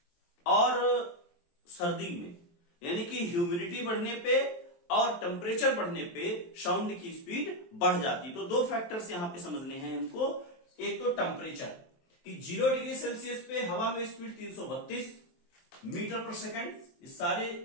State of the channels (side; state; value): right; late; 23 ms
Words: और सर्दी में यानी कि ह्यूमिडिटी बढ़ने पे और टेम्परेचर बढ़ने पे साउंड की स्पीड बढ़ जाती है। तो दो फैक्टर्स यहां पे समझने हैं हमको। एक तो टेम्परेचर कि 0 डिग्री सेल्सियस पे हवा में स्पीड 332 मीटर पर सेकंड, ये